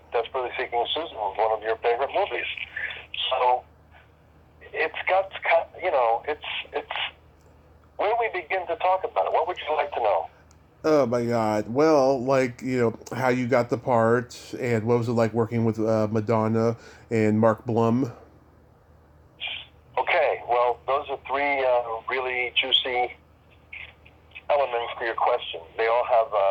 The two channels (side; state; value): both; identical; correlation 1.00